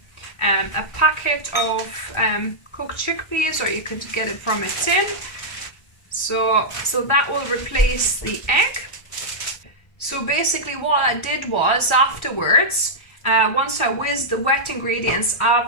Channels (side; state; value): right; late; 1.3 ms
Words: a packet of cooked chickpeas, or you could get it from a tin. So that will replace the egg. So basically what I did was afterwards, once I whizzed the wet ingredients,